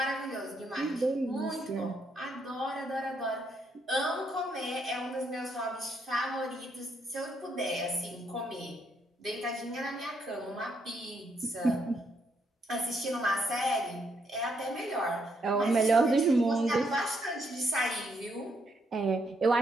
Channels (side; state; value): both; normal; correlation 0.75